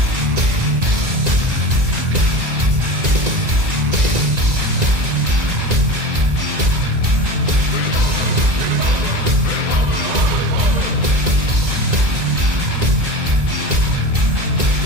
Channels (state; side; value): late; left; 1.9 ms